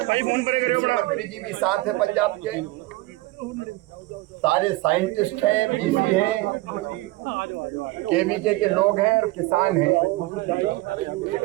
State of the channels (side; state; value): left; quieter; 19.7 dB